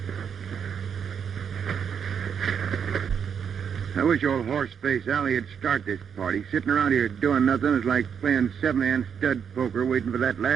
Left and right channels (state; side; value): quieter; left; 7.4 dB